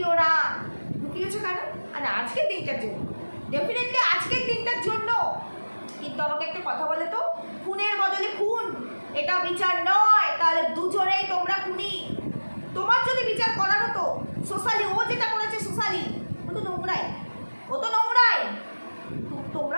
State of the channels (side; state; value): both; inverted; correlation -1.00